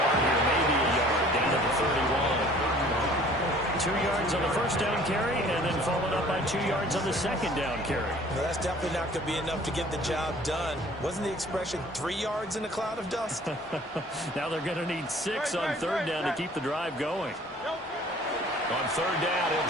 here, maybe a yard, down to the 31. 2 yards on the first down carry, and then followed up by 2 yards on the second down carry. Well, that's definitely not going to be enough to get the job done. Wasn't the expression 3 yards in a cloud of dust? Now they're going to need 6 on third down to keep the drive going. On third down, he'll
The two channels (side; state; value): both; normal; correlation 0.52